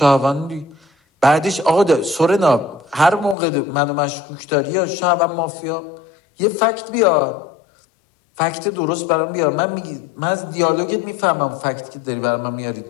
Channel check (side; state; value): right; drops out; at 3.4 s